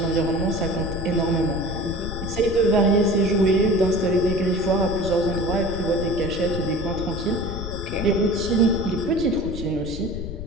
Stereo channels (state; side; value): noise; left; rumble, 9 dB below the sound